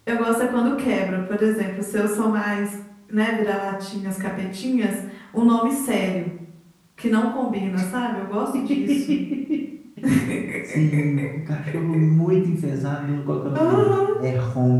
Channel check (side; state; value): both; identical; correlation 1.00